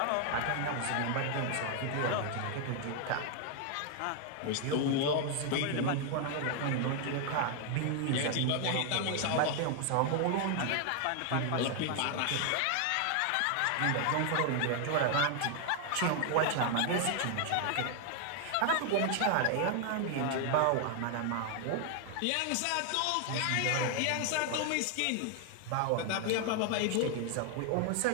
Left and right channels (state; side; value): different; both; correlation 0.00